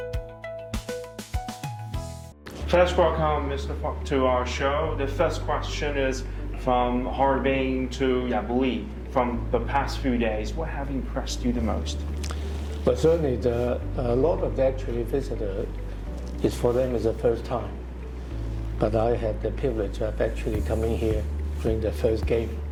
First, welcome Mr. Fok to our show. The first question is from Harbin to Yabuli. From the past few days, what have impressed you the most? But certainly, a lot of the actually visitors is for them is the first time. But I had the privilege of actually coming here during the first game.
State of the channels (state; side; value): identical; both; correlation 1.00